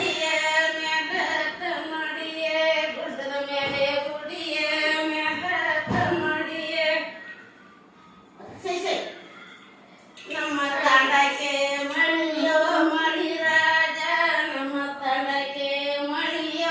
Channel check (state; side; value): identical; both; correlation 1.00